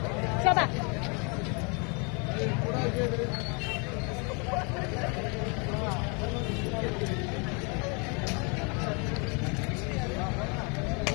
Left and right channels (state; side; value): quieter; right; 34.0 dB